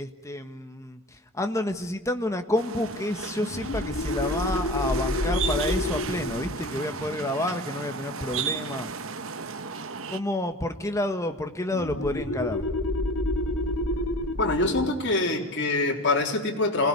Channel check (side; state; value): both; normal; correlation 0.35